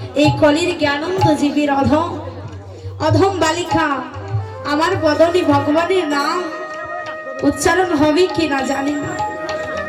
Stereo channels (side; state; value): both; identical; correlation 1.00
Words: এই কলির জ্ঞানন্দ জীবীর অধম বালিকা। আমার বদনে ভগবানের নাম উচ্চারণ হবে কিনা জানি না।